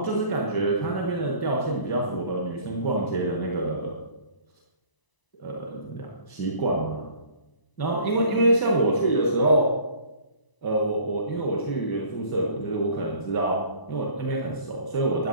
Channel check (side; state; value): right; late; 1.0 ms